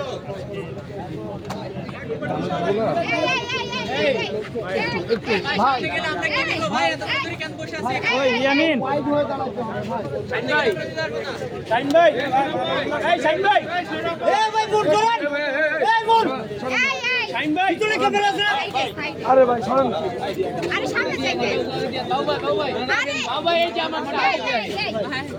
আরে ভাই সরেন, আরে সামনে যাইবে দাও ভাই, দাও ভাই, আরে দাও ভাই, এই যে আমার ভাই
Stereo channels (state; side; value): identical; both; correlation 1.00